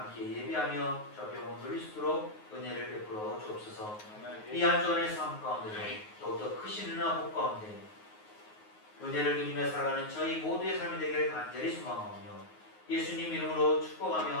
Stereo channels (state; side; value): late; right; 9.5 ms